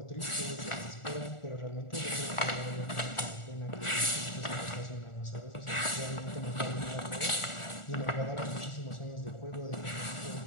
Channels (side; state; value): right; late; 1.4 ms